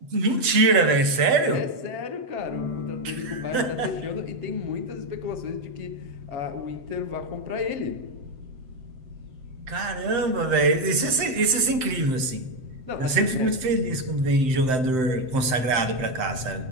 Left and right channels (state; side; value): late; left; 7.7 ms